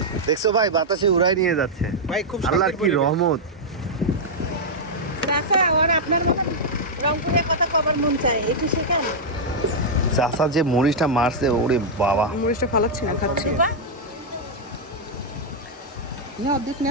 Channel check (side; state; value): both; normal; correlation -0.05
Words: দেখছো ভাই বাতাসে উড়াই নিয়ে যাচ্ছে ভাই, খুব আল্লাহর কি রহমত। চাচা আর আপনার মতো রংপুরের কথা কবার মন চায়, একটু শেখান। চাচা যে মরিচটা মারছে, ওরে বাবা। মরিচটা ফালাচ্ছি না, খাচ্ছি না। অর্ধেক